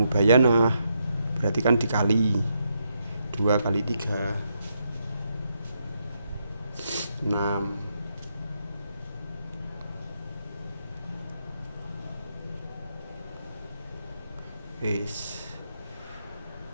berarti kan dikali 2 kali 3 6. Wis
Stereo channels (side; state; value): both; inverted; correlation -0.80